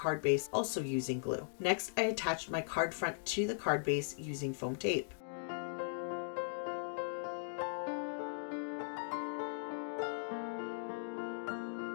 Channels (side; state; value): right; silent; digital silence